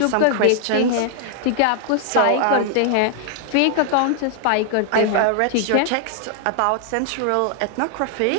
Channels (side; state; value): both; different; correlation 0.00